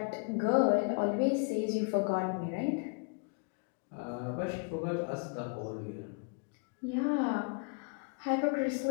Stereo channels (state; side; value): quieter; right; 34.9 dB